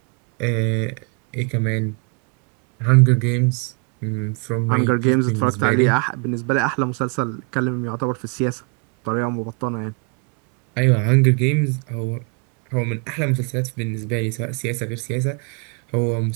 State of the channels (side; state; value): left; quieter; 36.7 dB